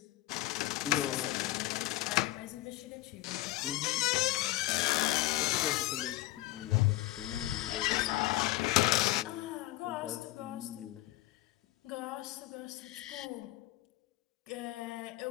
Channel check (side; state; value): right; quieter; 17.8 dB